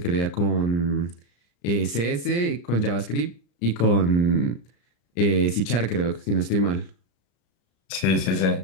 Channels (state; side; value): late; right; 34 ms